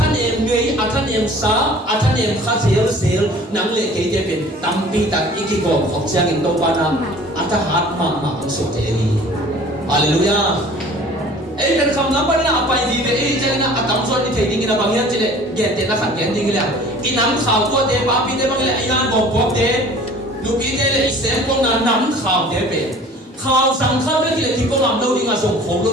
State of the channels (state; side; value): normal; both; correlation 0.48